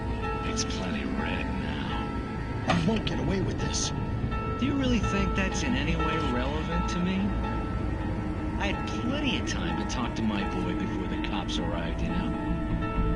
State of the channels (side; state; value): both; identical; correlation 1.00